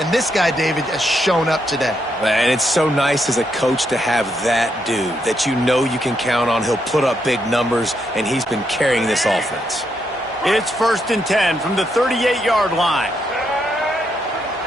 this guy, David, has shown up today. And it's so nice as a coach to have that dude that you know you can count on. He'll put up big numbers, and he's been carrying this offense. It's 1st and 10 from the 38-yard line.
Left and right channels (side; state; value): both; normal; correlation 0.79